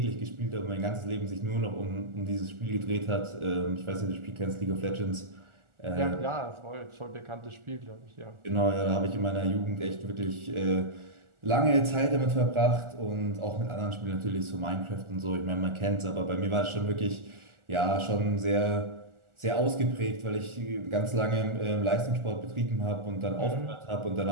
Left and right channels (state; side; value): late; left; 1.4 ms